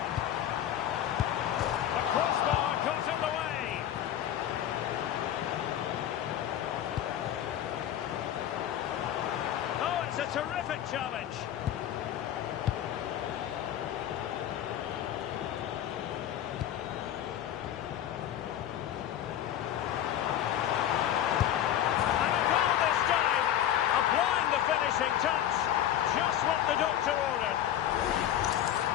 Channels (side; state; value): right; quieter; 11.2 dB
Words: The crossbar got in the way. Oh, it's a terrific challenge. Touch, just what the doctor ordered.